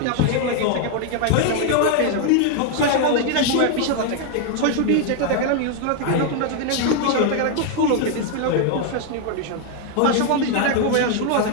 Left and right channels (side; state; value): both; different; correlation 0.00